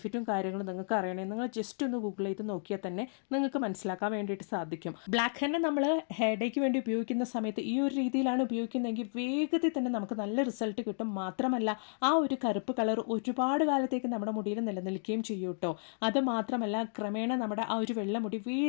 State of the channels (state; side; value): silent; right; digital silence